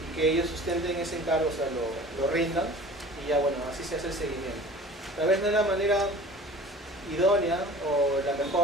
que ellos sustenten ese encargo, o sea, lo rindan y ya bueno, así se hace el seguimiento. Tal vez no es la manera idónea o la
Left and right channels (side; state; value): both; normal; correlation 0.43